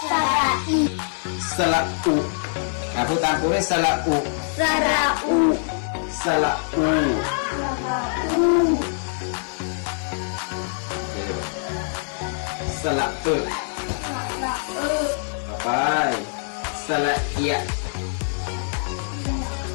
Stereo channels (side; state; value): right; silent; digital silence